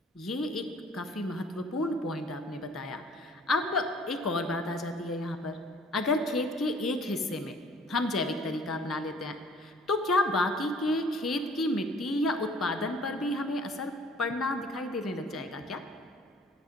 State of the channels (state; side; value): normal; both; correlation 0.54